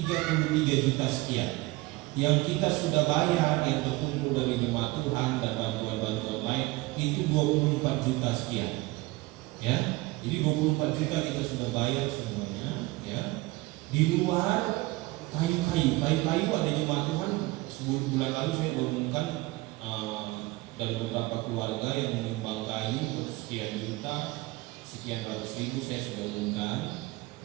33 juta sekian. Yang kita sudah bayar yang terkumpul dari jemaat Tuhan dan bantuan-bantuan lain itu 24 juta sekian ya. Jadi 24 juta kita sudah bayar semuanya, ya. Di luar kayu-kayu ada jemaat Tuhan. Bulan lalu saya mengumumkan dari beberapa keluarga yang menyumbang kayu sekian juta, sekian ratus ribu saya sudah umumkan.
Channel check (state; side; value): quieter; left; 21.1 dB